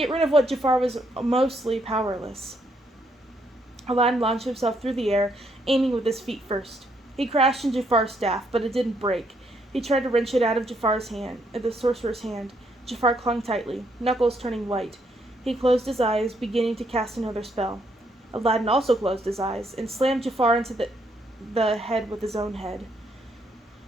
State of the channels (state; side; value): normal; both; correlation 0.73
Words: rid of what Jafar was mostly powerless. Aladdin launched himself through the air, aiming with his feet first. He crashed in Jafar's staff, but it didn't break. He tried to wrench it out of the sorcerer's hand. Jafar clung tightly, knuckles turning white. He closed his eyes, beginning to cast another spell. Aladdin also closed his eyes, and slammed Jafar into the head with his own head.